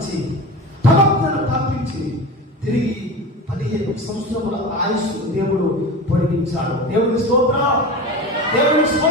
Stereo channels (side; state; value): both; normal; correlation 0.29